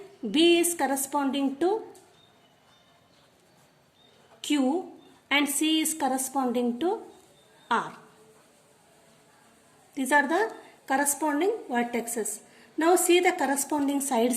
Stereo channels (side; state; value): both; identical; correlation 1.00